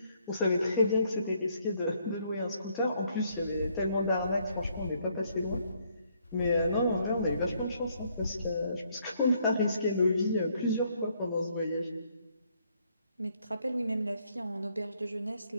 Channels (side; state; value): both; inverted; correlation -0.70